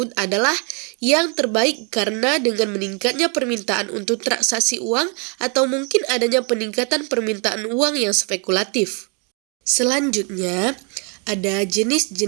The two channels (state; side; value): quieter; left; 35.7 dB